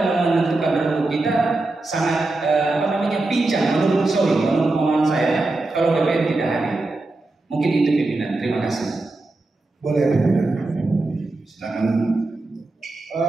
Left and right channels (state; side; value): quieter; left; 3.1 dB